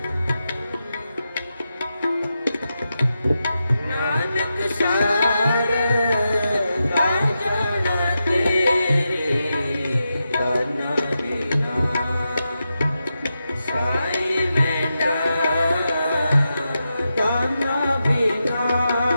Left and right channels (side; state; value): both; inverted; correlation -0.88